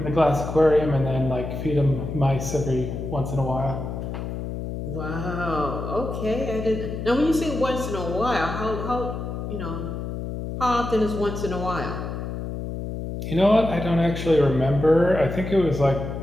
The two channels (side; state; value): left; noise; hum, 6 dB below the sound